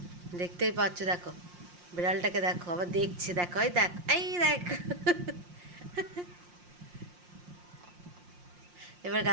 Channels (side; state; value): left; late; 5.6 ms